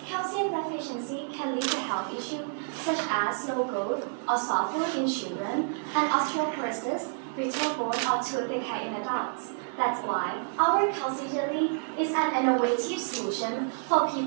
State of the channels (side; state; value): left; silent; digital silence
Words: deficiency can lead to health issues such as slow growth or soft bone in children and osteoporosis, brittle bone, or tooth decay in adults. That's why our calcium jelly is an innovative solution for